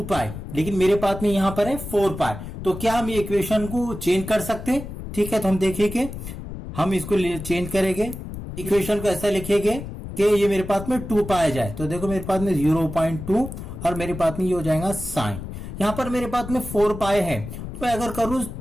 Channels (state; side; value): noise; left; rumble, 9 dB below the sound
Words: पाई, लेकिन मेरे पास में यहां पर है 4 पाई। तो क्या हम ये इक्वेशन को चेंज कर सकते हैं? ठीक है, तो हम देखेंगे, हम इसको चेंज करेंगे, इक्वेशन को ऐसा लिखेंगे कि ये मेरे पास में 2 पाई जाए। तो देखो मेरे पास में 0.2 और मेरे पास में ये हो जाएगा साइन। यहां पर मेरे पास में 4 पाई है, तो मैं अगर करूं